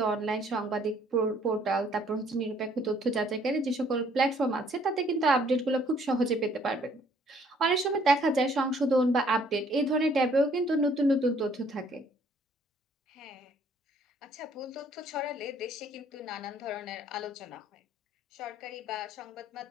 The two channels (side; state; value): both; normal; correlation 0.62